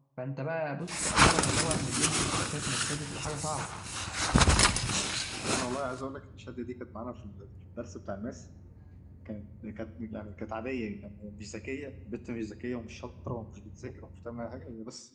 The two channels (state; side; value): identical; both; correlation 1.00